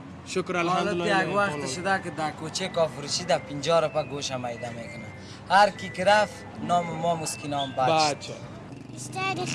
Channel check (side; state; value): both; identical; correlation 1.00